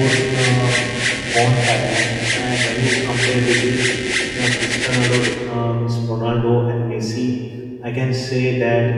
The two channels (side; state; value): both; identical; correlation 1.00